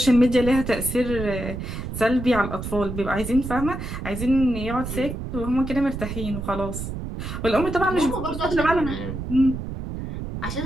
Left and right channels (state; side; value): noise; right; rumble, 6 dB below the sound